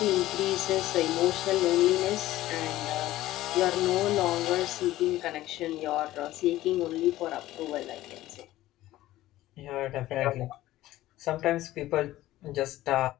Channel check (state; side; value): quieter; right; 15.6 dB